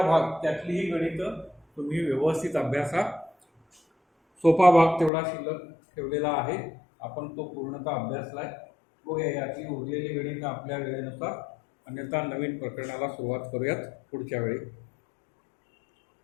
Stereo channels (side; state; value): right; drops out; at 5.1 s